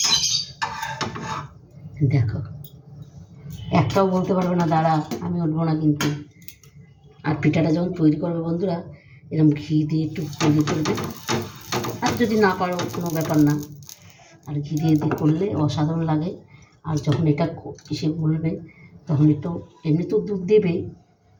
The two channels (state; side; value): identical; both; correlation 1.00